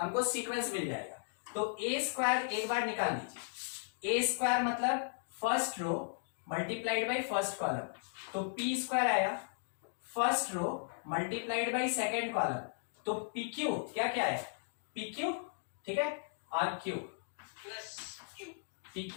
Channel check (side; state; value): right; silent; digital silence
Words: सीक्वेंस मिल जाएगा। तो ए स्क्वायर एक बार निकाल लीजिए। ए स्क्वायर मतलब first row multiplied by first column, तो पी स्क्वायर आया first row multiplied by second column, तो पी क्यू क्या क्या आया पी क्यू, ठीक है, और Q plus Q, P